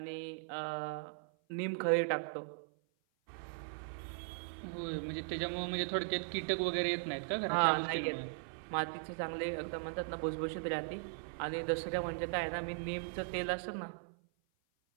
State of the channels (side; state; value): left; silent; 52 dB below the other